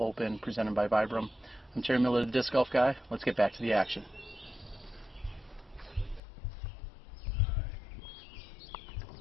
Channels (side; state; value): right; drops out; at 6.2 s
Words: presented by VibrAM. I'm Terry Miller, the Disc Golf Guy. Let's get back to the action.